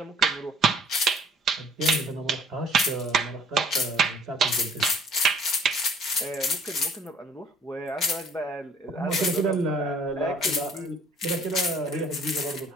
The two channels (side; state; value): both; normal; correlation 0.56